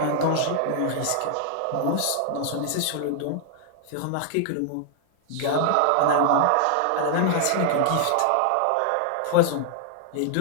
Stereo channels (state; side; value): different; both; correlation 0.00